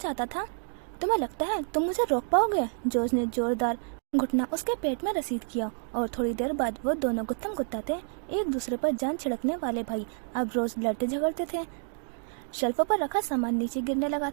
था। तुम्हें लगता है तुम मुझे रोक पाओगे? जॉर्ज ने जोरदार घुटना उसके पेट में रसीद किया और थोड़ी देर बाद वो दोनों गुत्थम गुत्ता थे। एक दूसरे पर जान छिड़कने वाले भाई अब रोज लड़ते झगड़ते थे। शेल्फों पर रखा सामान नीचे गिरने लगा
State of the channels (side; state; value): left; silent; digital silence